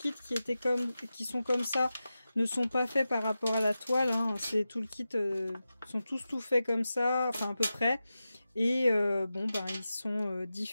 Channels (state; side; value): inverted; both; correlation -0.93